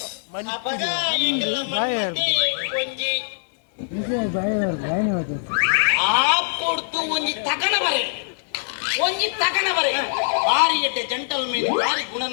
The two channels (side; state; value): right; silent; 64 dB below the other